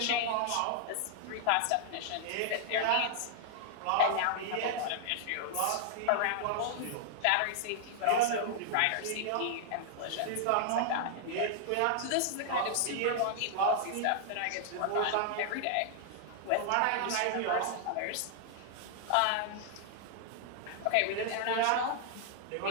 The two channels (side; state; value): both; different; correlation -0.01